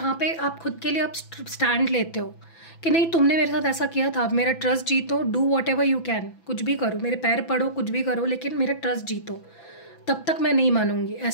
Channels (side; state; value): right; late; 6.0 ms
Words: पे आप खुद के लिए आप स्टैंड लेते हो कि नहीं, तुमने मेरे साथ ऐसा किया था, अब मेरा ट्रस्ट जीतो, do what ever you can, कुछ भी करो, मेरे पैर पड़ो, कुछ भी करो, लेकिन मेरा ट्रस्ट जीतो, तब तक मैं नहीं मानूंगी।